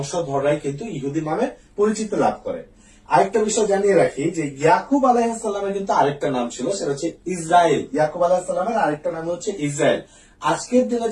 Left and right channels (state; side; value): identical; both; correlation 1.00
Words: কিন্তু ইহুদি নামে পরিচিতি লাভ করে। আরেকটা বিষয় জানিয়ে রাখি যে ইয়াকুব আলাইহিস সালামের কিন্তু আরেকটা নাম ছিল, সেটা হচ্ছে ইসরায়েল। ইয়াকুব আলাইহিস সালামের আরেকটা নাম হচ্ছে ইসরায়েল। আজকের দিনে